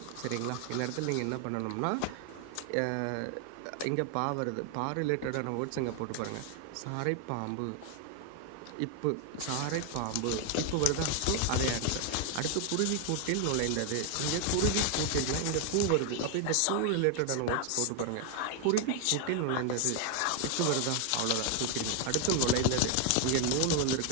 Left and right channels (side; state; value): both; different; correlation 0.01